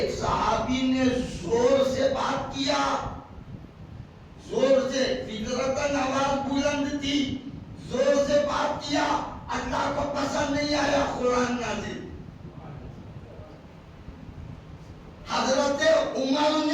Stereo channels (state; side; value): identical; both; correlation 1.00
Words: صحابی نے زور سے بات کیا, زور سے, فطرتاً آواز بلند تھی, زور سے بات کیا, اللہ کو پسند نہیں آیا, قرآن نازل. حضرت عمر